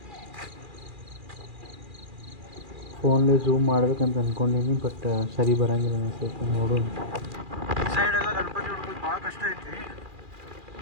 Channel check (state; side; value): late; left; 2.4 ms